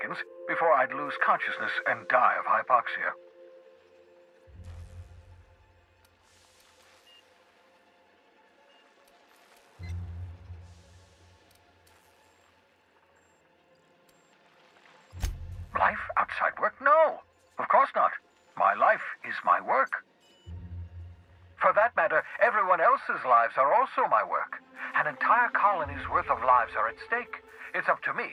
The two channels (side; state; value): both; identical; correlation 1.00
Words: before I'd lose consciousness and die of hypoxia. Life outside work? No, of course not. My life is my work. For that matter, everyone else's lives are also my work. An entire colony's worth of lives are at stake. It's up to me,